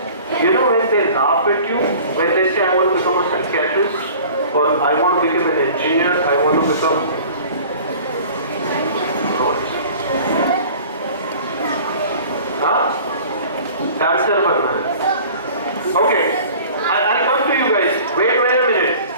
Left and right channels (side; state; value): both; inverted; correlation -0.44